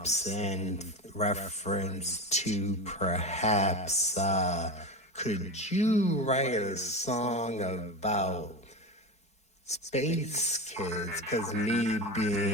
in reference to perhaps, could you write a song about space kids? Because me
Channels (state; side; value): late; right; 4.7 ms